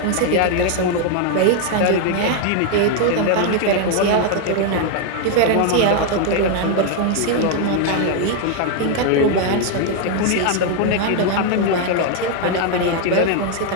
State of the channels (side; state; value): both; different; correlation 0.00